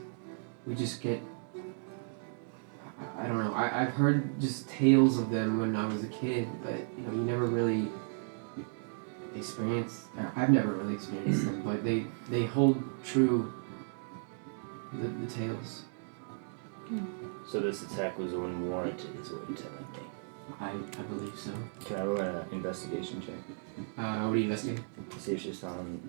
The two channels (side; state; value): left; silent; digital silence